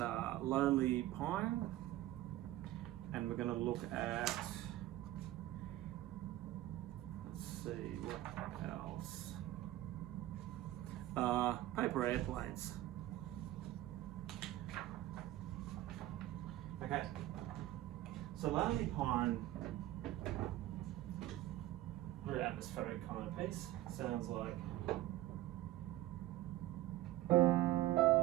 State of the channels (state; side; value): quieter; left; 15.3 dB